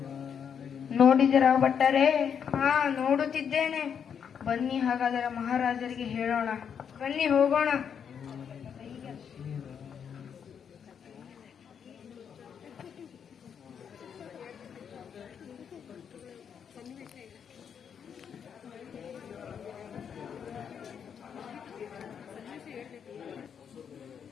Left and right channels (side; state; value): right; quieter; 7.6 dB